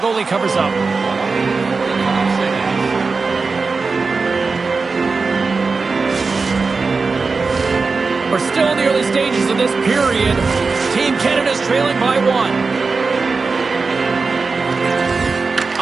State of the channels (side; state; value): left; quieter; 4.3 dB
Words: covers up. We're still in the early stages of this period. Team Canada's trailing by 1.